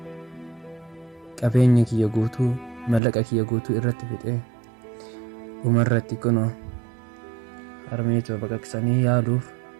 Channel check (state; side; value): drops out; left; at 3.0 s